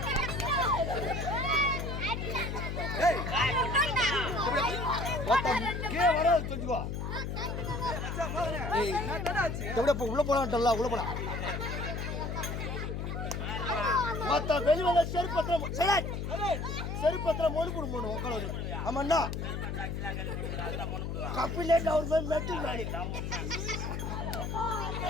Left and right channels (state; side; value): noise; left; hum, 3 dB below the sound